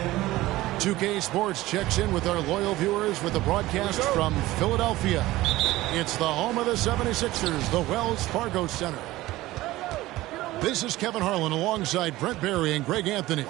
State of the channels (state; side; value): quieter; left; 17.5 dB